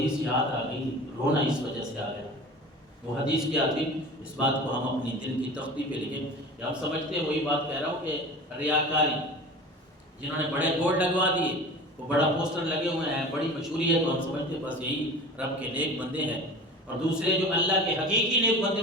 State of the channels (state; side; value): normal; both; correlation 0.36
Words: یاد آ گئی، رونا اس وجہ سے آ گیا۔ وہ حدیث کیا تھی؟ اس بات کو ہم اپنی دل کی تختی پہ لکھیں کہ ہم سمجھتے ہیں، وہی بات کہہ رہا ہوں کہ ریاکاری، جنہوں نے بڑے بورڈ لگوا دیے، وہ بڑا پوسٹر لگے ہوئے ہیں، بڑی مشہوری ہے، تو ہم سمجھتے ہیں بس یہی رب کے نیک بندے ہیں، اور دوسرے جو اللہ کے حقیقی نیک بندے